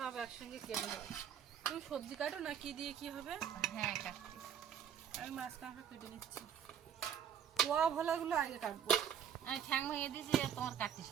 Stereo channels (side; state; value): left; quieter; 8.7 dB